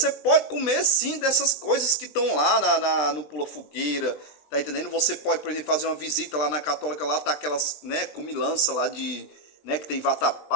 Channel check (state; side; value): late; right; 20 ms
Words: pode comer sim dessas coisas que estão lá no Pula Fogueira, tá entendendo? Você pode, por exemplo, fazer uma visita lá na Católica, lá tá aquelas, né, comilança lá de, né, que tem